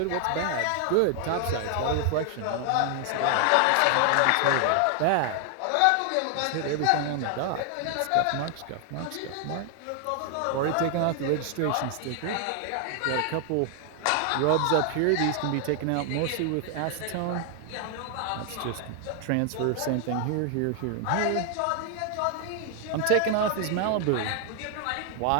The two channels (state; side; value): different; both; correlation 0.00